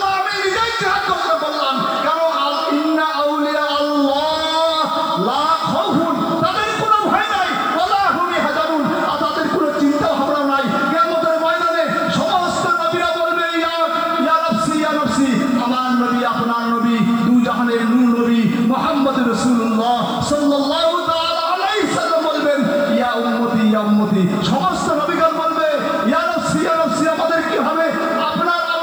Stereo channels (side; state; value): right; noise; hiss, 27 dB below the sound